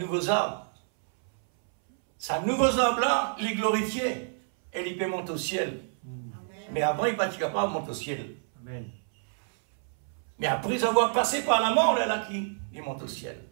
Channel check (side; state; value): left; silent; 59 dB below the other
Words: arbre. C'est un nouveau arbre là, il est glorifié. Et il peut monter au ciel. Mais après, il n'est pas capable de monter au ciel. Amen. Mais après avoir passé par la mort, là, il monte au ciel.